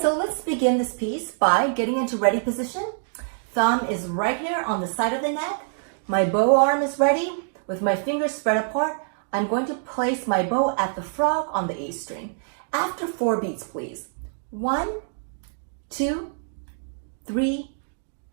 let's begin this piece by getting into ready position. Thumb is right here on the side of the neck. My bow arm is ready. With my fingers spread apart, I'm going to place my bow at the frog on the A string. After 4 beats, please. 1, 2, 3,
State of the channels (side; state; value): left; silent; digital silence